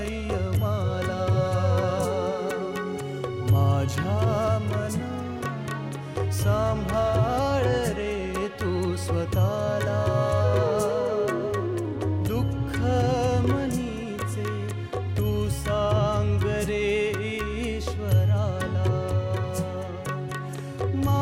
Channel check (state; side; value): identical; both; correlation 1.00